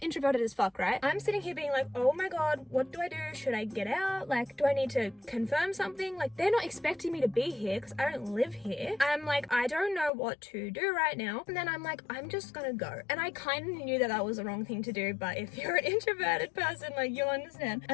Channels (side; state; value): right; drops out; at 10.1 s